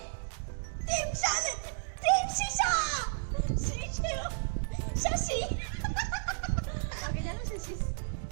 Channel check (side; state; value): left; silent; digital silence